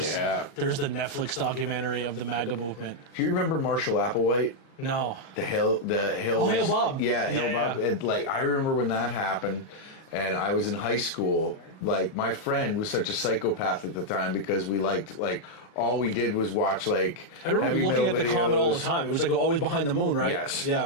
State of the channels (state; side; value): late; right; 38 ms